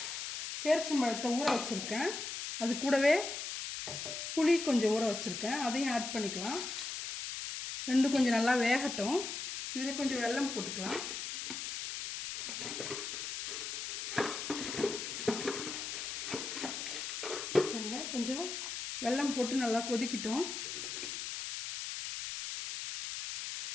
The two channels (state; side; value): noise; left; hiss, 5 dB below the sound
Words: பேரிச்சம்பழத்தை ஊற வச்சுருக்கேன். அது கூடவே புளி கொஞ்சம் ஊற வச்சுருக்கேன், அதையும் ஆட் பண்ணிக்கலாம். ரெண்டும் கொஞ்சம் நல்லா வேகட்டும். இதில் கொஞ்சம் வெல்லம் போட்டுக்கலாம். கொஞ்சம் வெல்லம் போட்டு நல்லா கொதிக்கிட்டோம்.